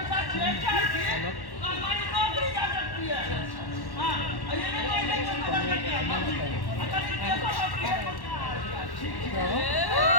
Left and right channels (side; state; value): right; late; 1.1 ms